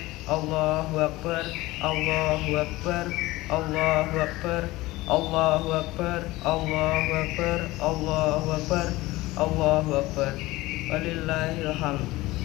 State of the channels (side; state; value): right; quieter; 19.3 dB